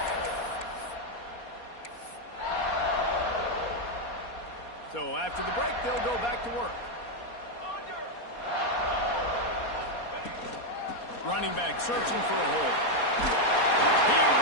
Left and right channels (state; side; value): late; right; 4.2 ms